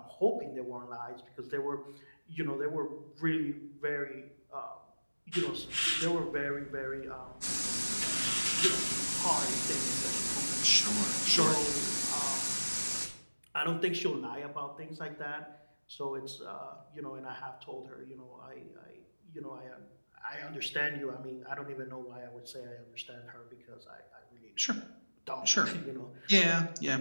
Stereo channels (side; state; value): both; inverted; correlation -1.00